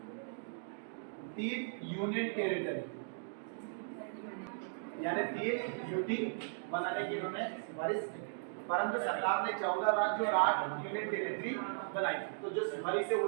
3 यूनियन टेरिटरी, यानी 3 यूटी बनाने की इन्होंने सिफारिश की। परंतु सरकार ने 14 राज्य और 8 यूनियन टेरिटरी बनाई। तो जो सिफारिश है वो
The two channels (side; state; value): left; silent; digital silence